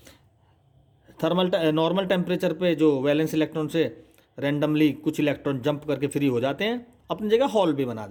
नॉर्मल टेम्परेचर पे जो वैलेंस इलेक्ट्रॉन से रैंडमली कुछ इलेक्ट्रॉन जंप करके फ्री हो जाते हैं, अपनी जगह हॉल भी बना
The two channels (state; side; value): identical; both; correlation 1.00